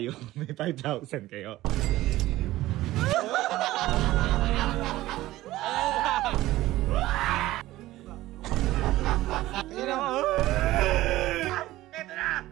may 5,000 kayo. Ito na!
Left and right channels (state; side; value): quieter; left; 16.5 dB